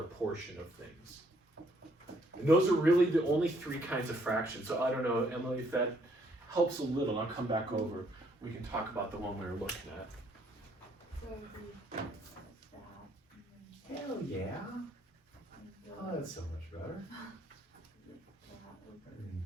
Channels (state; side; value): normal; both; correlation 0.68